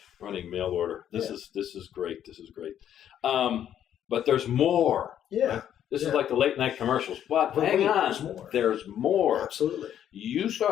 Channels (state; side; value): quieter; right; 10.2 dB